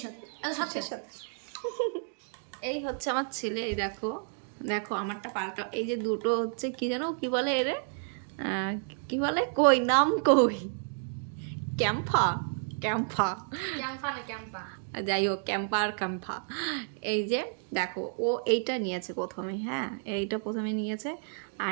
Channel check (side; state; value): left; silent; 57 dB below the other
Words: সাথে এই হচ্ছে আমার ছেলে। এই দেখো দেখো আমারটা পাল্টা, এই যে দুটো হচ্ছে কি জানো কি বলে এরে, কি বলে কই নাম কই, ক্যাম্পা ক্যাম্পা ক্যাম্পা না ক্যাম্পা, যাই হোক ক্যাম্পা আর ক্যাম্পা। এই যে দেখো ও এইটা নিয়েছে প্রথমে, হ্যাঁ এইটা প্রথমে নিয়েছে।